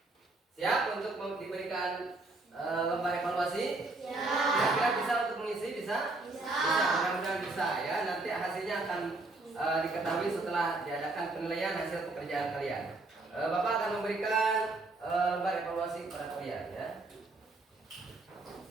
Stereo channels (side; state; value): left; quieter; 3.2 dB